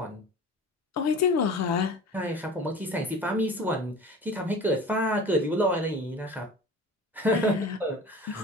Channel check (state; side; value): normal; both; correlation 0.38